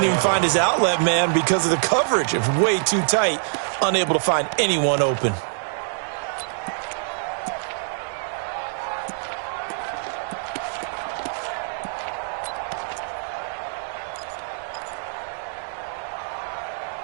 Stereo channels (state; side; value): silent; left; digital silence